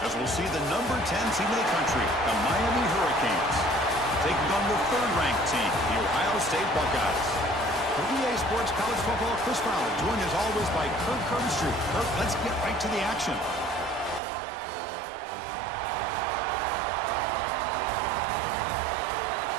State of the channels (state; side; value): drops out; left; at 14.2 s